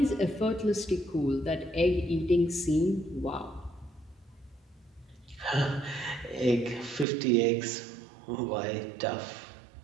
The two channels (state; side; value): drops out; left; at 7.1 s